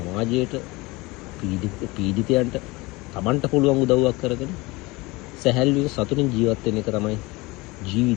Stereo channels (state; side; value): quieter; right; 23.0 dB